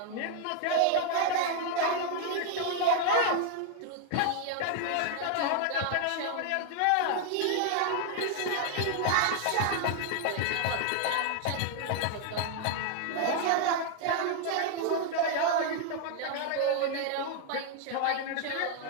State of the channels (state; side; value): different; both; correlation 0.00